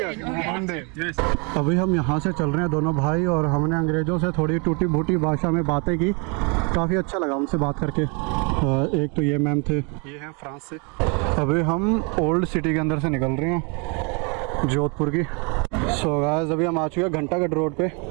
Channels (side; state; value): left; quieter; 33.4 dB